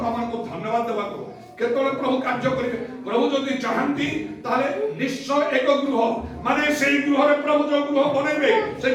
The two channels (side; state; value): both; identical; correlation 1.00